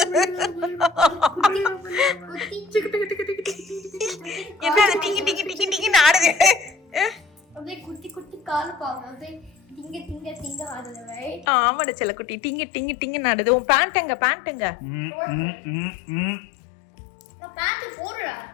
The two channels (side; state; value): right; drops out; at 11.5 s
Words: என்ன டிங்கி டிங்கி டிங்கி டிங்கி ஆடுது. அப்படியே குட்டி குட்டி கால் பாங்க. அப்படியே டிங்க டிங்க டிங்க ஆடுது. ரைட்? ஆமாடா செல்லக்குட்டி டிங்கி டிங்கி டிங்கி ஆடுது. உன் பேண்ட் எங்க? நான் பேண்ட் போடுறா.